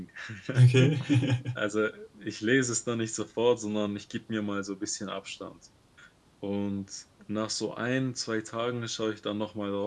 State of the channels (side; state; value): both; identical; correlation 1.00